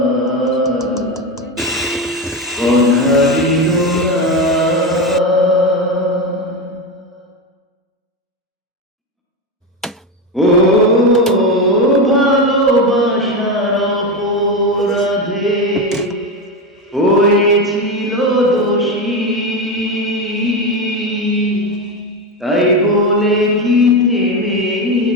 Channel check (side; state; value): both; normal; correlation 0.16